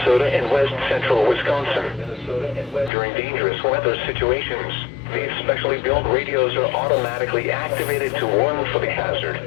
and west central Wisconsin. During dangerous weather situations, these specially built radios are automatically activated to warn for the hazard.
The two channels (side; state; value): right; drops out; at 2.9 s